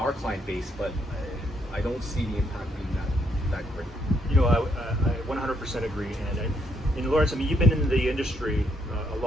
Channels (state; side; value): normal; both; correlation 0.74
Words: client base, but I don't see the impact being that great. You know, I 100% agree. And Lawrence, I mean, you've been in the industry a